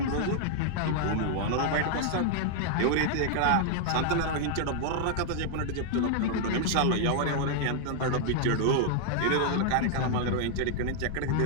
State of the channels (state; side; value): different; both; correlation 0.00